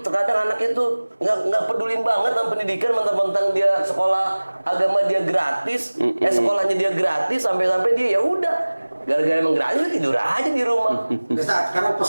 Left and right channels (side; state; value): both; inverted; correlation -1.00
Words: Terkadang anaknya tuh nggak pedulin banget sama pendidikan, mentang-mentang dia sekolah agama dia gratis, sekolahnya dia gratis, sampai-sampai dia ya udah gara-gara emang gratis dia tidur aja di rumah. Ustaz, sekarang